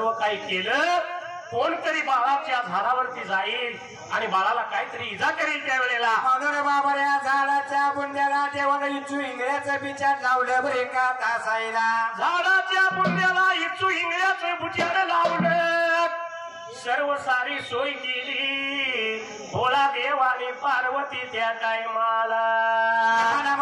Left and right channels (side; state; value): both; identical; correlation 1.00